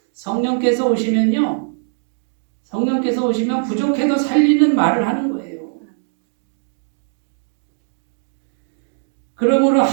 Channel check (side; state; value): left; silent; digital silence